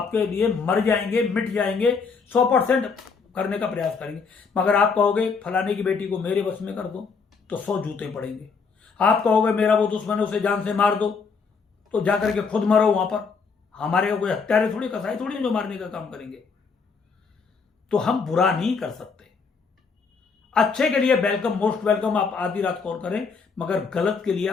लिए मर जाएंगे, मिट जाएंगे, 100% करने का प्रयास करेंगे। मगर आप कहोगे फलाने की बेटी को मेरे बस में कर दो, तो 100 जूते पड़ेंगे। आप कहोगे मेरा वो दुश्मन है, उसे जान से मार दो, तो जाकर के खुद मरो वहां पर। हमारे कोई हत्यारे थोड़ी, कसाई थोड़ी जो मारने का काम करेंगे। तो हम बुरा नहीं कर सकते, अच्छे के लिए वेलकम, मोस्ट वेलकम। आप आधी रात कॉल करें, मगर गलत के लिए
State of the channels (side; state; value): right; quieter; 5.2 dB